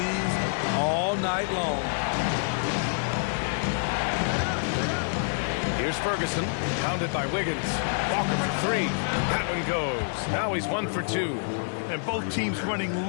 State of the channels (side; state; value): right; silent; digital silence